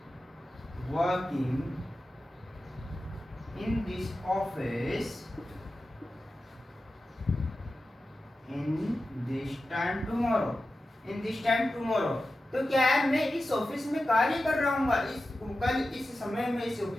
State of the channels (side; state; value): both; normal; correlation 0.93